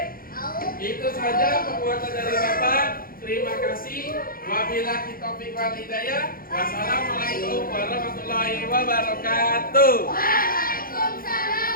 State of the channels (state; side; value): late; right; 0.42 ms